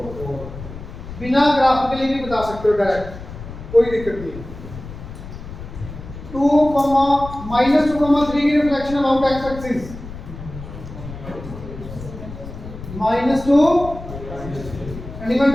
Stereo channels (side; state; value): left; noise; rumble, 12 dB below the sound